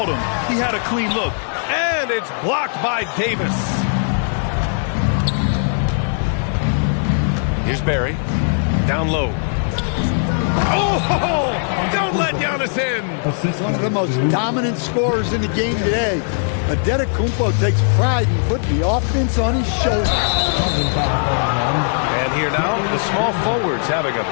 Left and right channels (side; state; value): right; silent; 57 dB below the other